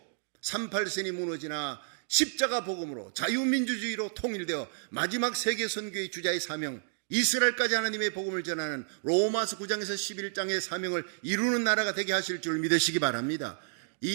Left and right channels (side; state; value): left; silent; digital silence